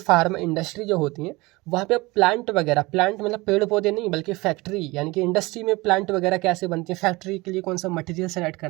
इंडस्ट्री जो होती है वहाँ पे प्लांट वगैरह, प्लांट मतलब पेड़ पौधे नहीं बल्कि फैक्ट्री, यानी कि इंडस्ट्री में प्लांट वगैरह कैसे बनती है, फैक्ट्री के लिए कौन सा मटेरियल सेलेक्ट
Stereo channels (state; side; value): quieter; left; 22.6 dB